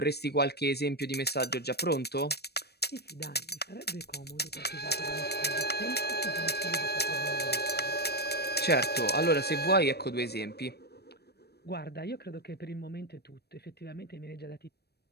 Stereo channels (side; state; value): right; late; 0.47 ms